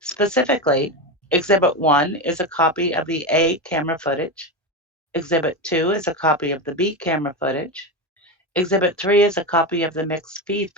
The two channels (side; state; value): both; normal; correlation 0.17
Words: Exhibit 1 is a copy of the A camera footage. Exhibit 2 is a copy of the B camera footage. Exhibit 3 is a copy of the mixed feed